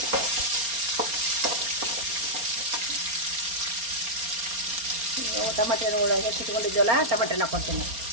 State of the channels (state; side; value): late; left; 4.3 ms